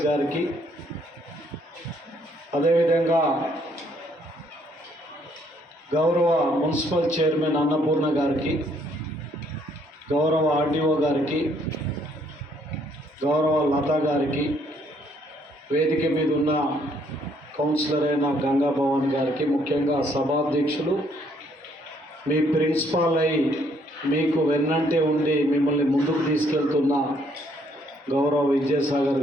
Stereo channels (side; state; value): both; normal; correlation 0.67